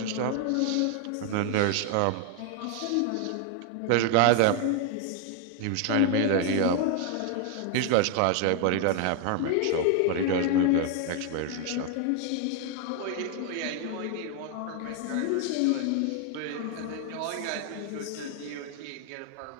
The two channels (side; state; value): both; different; correlation 0.00